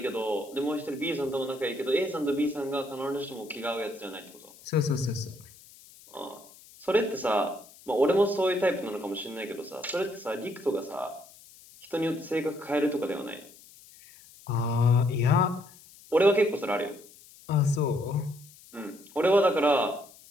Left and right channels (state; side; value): noise; left; hiss, 23 dB below the sound